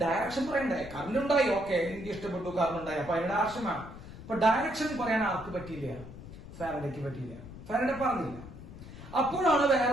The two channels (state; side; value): noise; left; rumble, 14 dB below the sound